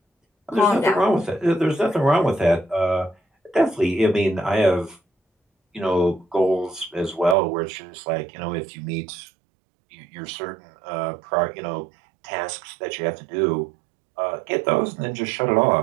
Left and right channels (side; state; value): left; drops out; at 7.4 s